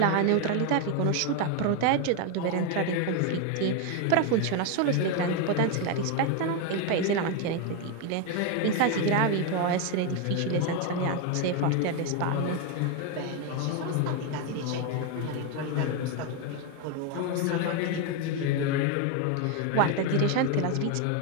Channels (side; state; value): both; different; correlation 0.01